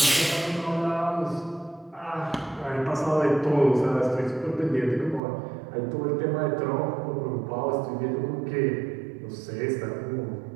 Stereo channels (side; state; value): left; drops out; at 5.2 s